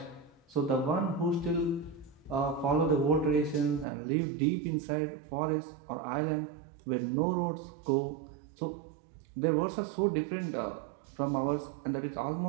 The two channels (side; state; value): left; drops out; at 3.9 s